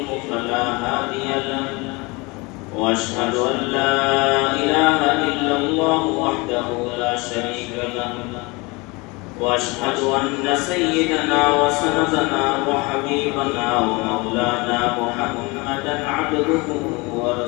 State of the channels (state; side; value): quieter; right; 26.0 dB